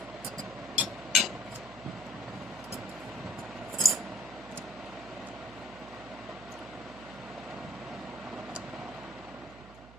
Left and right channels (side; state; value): right; noise; hum, 17 dB below the sound